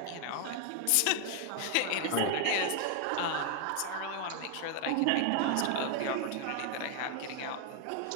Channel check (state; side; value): different; both; correlation 0.00